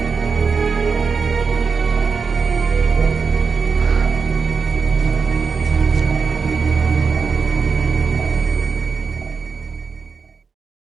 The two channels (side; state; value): left; quieter; 5.4 dB